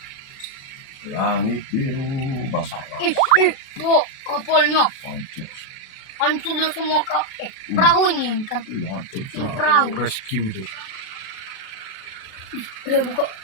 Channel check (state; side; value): late; right; 37 ms